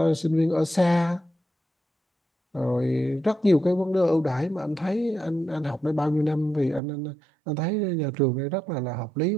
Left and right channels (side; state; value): left; drops out; at 6.8 s